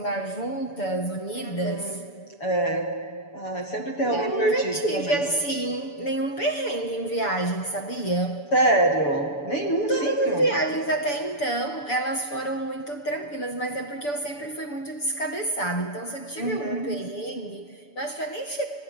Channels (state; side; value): late; right; 6.9 ms